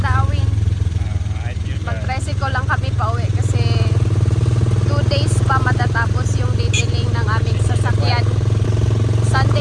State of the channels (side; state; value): both; identical; correlation 1.00